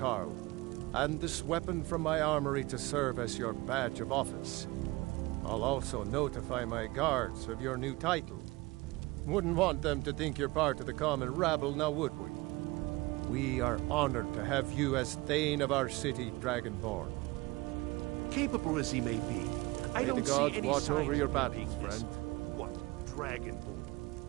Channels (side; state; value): left; quieter; 21.9 dB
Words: and this weapon from my armory to serve as your badge of office. I'll also notify my guards of your new title. Wouldn't want them to think you're part of the common rabble, now would we? We are honored to have you as Thane of our city, Dragonborn. Capable as he may be, I May don't the gods see any watch signs over your of battles, being this- friend. What? Dragonborn?